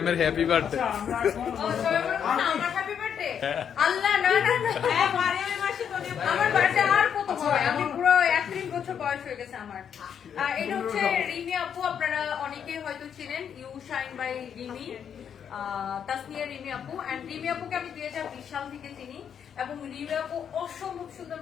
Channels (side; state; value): right; quieter; 8.1 dB